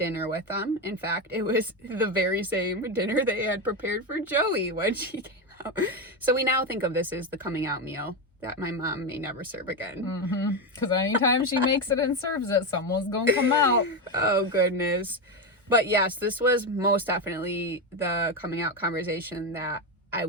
with them. In fact, it was the very same dinner they had prepared for Joey when she came out. So we now think of this as the coming out meal that my mom may never serve again. Because anytime she makes it and serves it, someone's gonna come out. Oh, goodness. But yes, this was most definitely the coming out conversation that I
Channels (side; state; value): both; normal; correlation 0.12